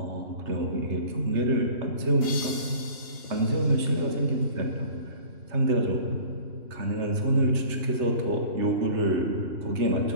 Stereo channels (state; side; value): late; left; 2.8 ms